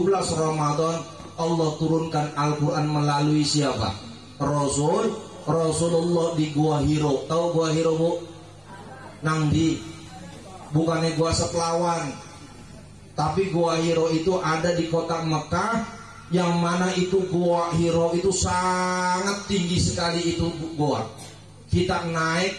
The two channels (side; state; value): both; identical; correlation 1.00